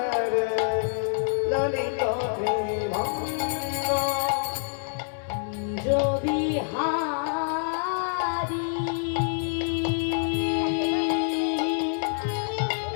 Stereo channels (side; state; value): right; silent; digital silence